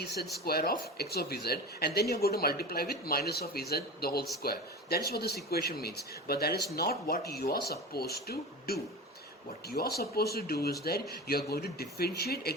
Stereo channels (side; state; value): both; normal; correlation 0.30